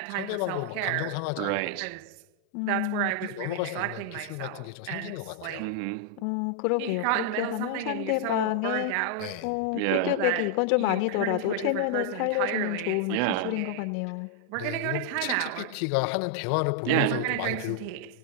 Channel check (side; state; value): both; different; correlation -0.01